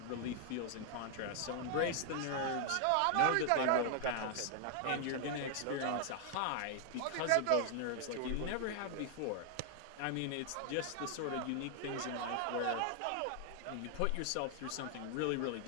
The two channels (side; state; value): both; different; correlation 0.00